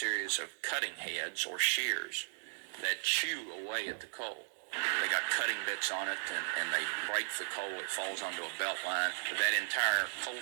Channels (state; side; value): silent; left; digital silence